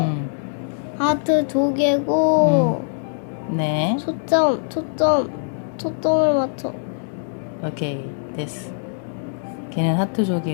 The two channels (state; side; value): silent; right; digital silence